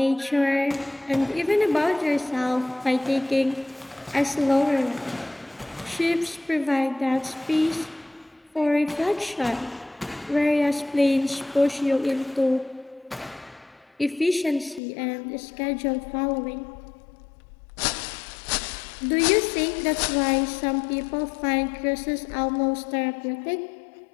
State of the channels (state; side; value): drops out; right; at 14.8 s